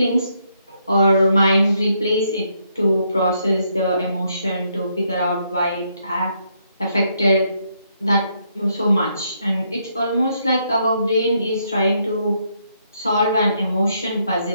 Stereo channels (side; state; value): both; inverted; correlation -0.75